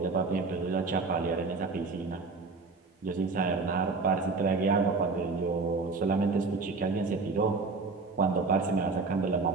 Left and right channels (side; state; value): left; quieter; 4.1 dB